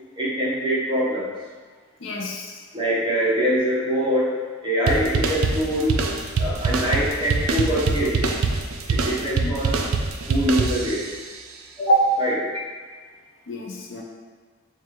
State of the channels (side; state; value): both; normal; correlation 0.33